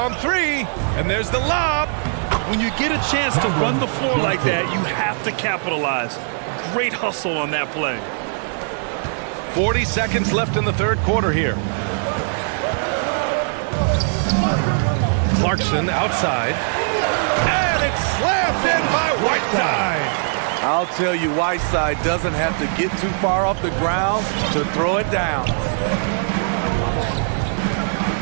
3. And there's the lob. When you get a chance to run the floor like that, you have to capitalize. Great hustle on that play. 40 seconds left in the third quarter here. Clarkson outside. And it's slammed in by Whiteside. I'll tell you, Whiteside doesn't have to get too far off the ground to throw it down.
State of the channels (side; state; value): left; silent; digital silence